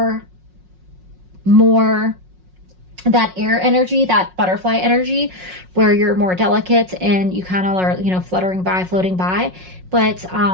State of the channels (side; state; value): left; late; 5.5 ms